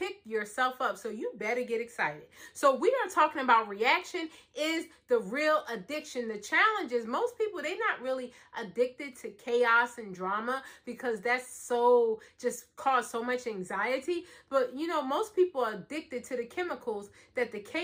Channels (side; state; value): both; identical; correlation 1.00